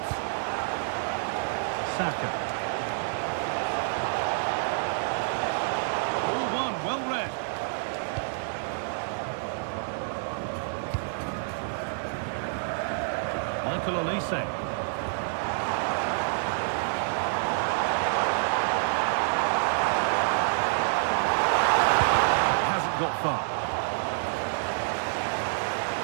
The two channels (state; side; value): silent; left; 59 dB below the other